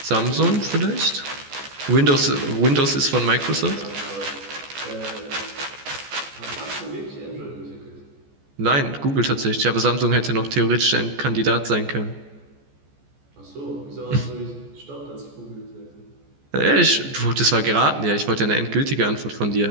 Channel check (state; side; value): late; left; 14 ms